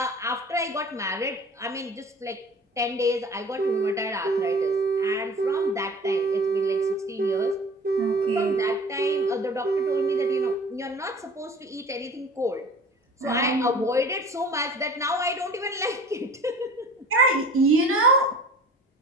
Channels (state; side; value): normal; both; correlation 0.43